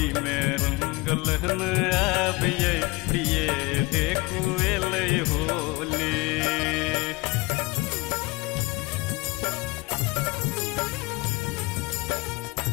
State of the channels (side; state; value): right; quieter; 24.0 dB